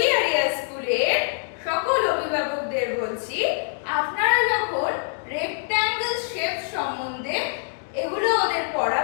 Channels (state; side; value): silent; right; digital silence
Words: স্কুলের সকল অভিভাবকদের বলছি, আপনারা যখন rectangle shape সম্বন্ধে এগুলো ওদের